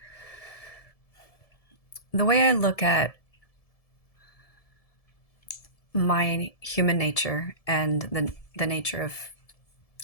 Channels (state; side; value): late; right; 1.7 ms